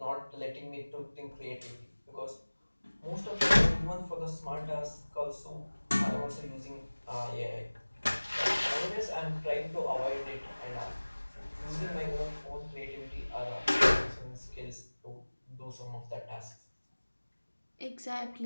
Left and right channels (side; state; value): both; inverted; correlation -1.00